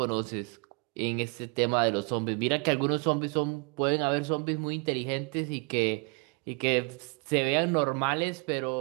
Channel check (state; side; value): quieter; left; 33.3 dB